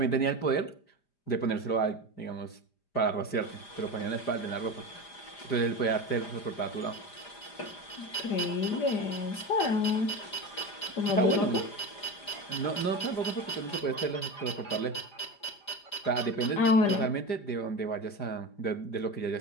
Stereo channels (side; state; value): right; late; 5.0 ms